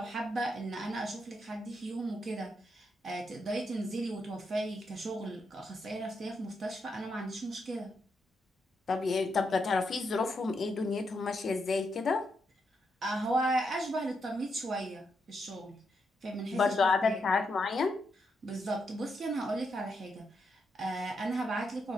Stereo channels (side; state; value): both; normal; correlation 0.81